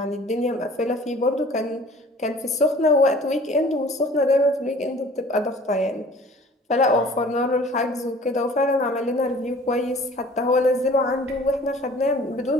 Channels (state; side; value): normal; both; correlation 0.49